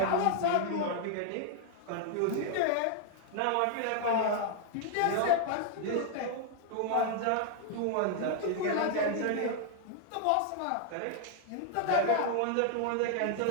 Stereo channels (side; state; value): both; different; correlation 0.00